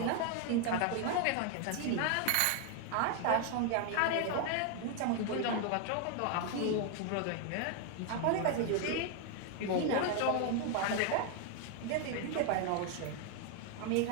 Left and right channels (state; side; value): different; both; correlation 0.01